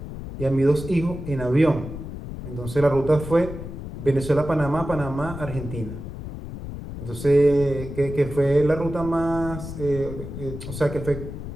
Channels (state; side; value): noise; left; rumble, 9 dB below the sound